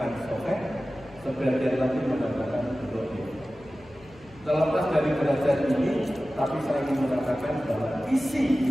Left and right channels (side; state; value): left; noise; hum, 25 dB below the sound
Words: sahih, sebagian lagi mengatakan dhaif. Terlepas dari derajat ini, tapi saya ingin mengatakan bahwa